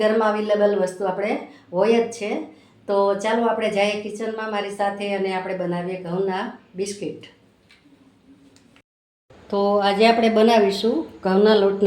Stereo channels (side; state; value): both; identical; correlation 1.00